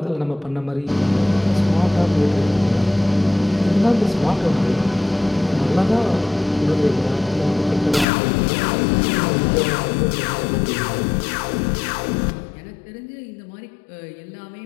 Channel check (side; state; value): right; drops out; at 8.1 s